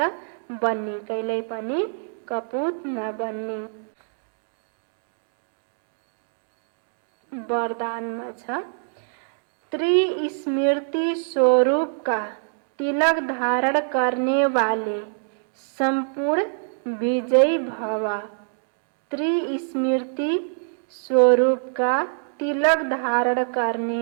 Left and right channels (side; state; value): left; silent; digital silence